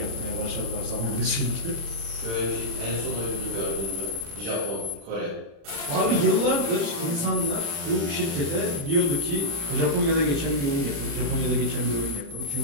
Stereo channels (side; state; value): left; late; 36 ms